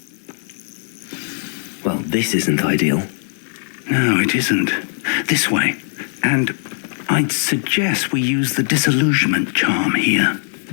Well, this isn't ideal. No, it isn't. This way. And I'd suggest we use the disillusionment charm here.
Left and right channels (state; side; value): silent; right; 56 dB below the other